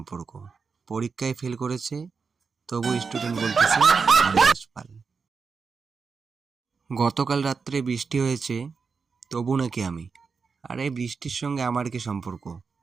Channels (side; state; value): left; quieter; 5.2 dB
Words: পরীক্ষায় ফেল করেছে তবু স্টুডেন্ট বলতেছে হরিদাস পাল। গতকাল রাত্রে বৃষ্টি হয়েছে তবু নাকি আমি। আরে বৃষ্টির সঙ্গে আমার কি সম্পর্ক?